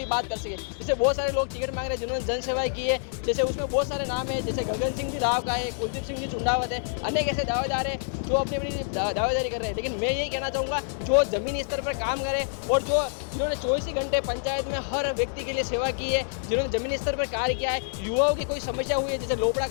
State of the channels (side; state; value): right; silent; digital silence